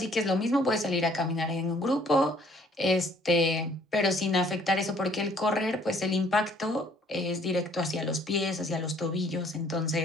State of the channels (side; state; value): both; normal; correlation 0.60